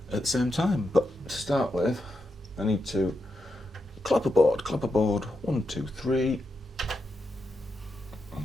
at the same time. But to start with, I need to clap a board, 1, 2, 3.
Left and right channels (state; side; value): normal; both; correlation 0.86